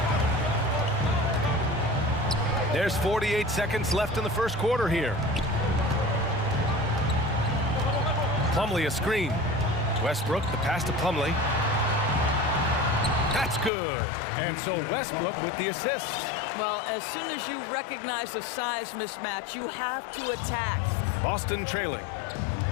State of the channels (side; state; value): right; drops out; at 13.7 s